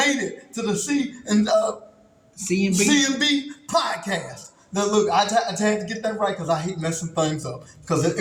it to the CMB. CMB podcast. Now look, I had to get that right because I hate messing things up because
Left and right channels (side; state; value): both; identical; correlation 1.00